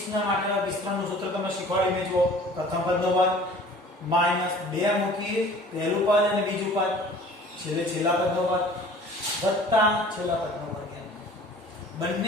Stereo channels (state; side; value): normal; both; correlation 0.47